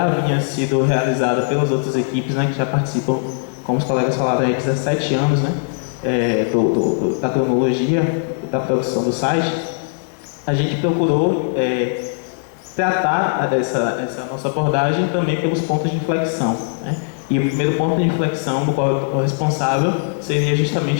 havia sido realizada pelas outras equipes, né, que já participam, como os colegas falaram, há 17 anos, né, da cronologia, da produção do site. A gente procurou tratar essa nossa abordagem também pelos pontos de inflexão, né? E o primeiro ponto de inflexão do qual eu estou responsável seria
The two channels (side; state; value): right; silent; digital silence